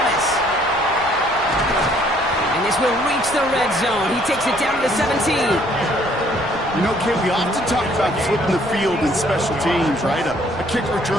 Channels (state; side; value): noise; left; rumble, 19 dB below the sound